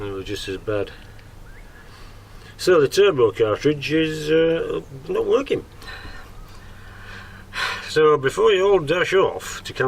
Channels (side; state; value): both; identical; correlation 1.00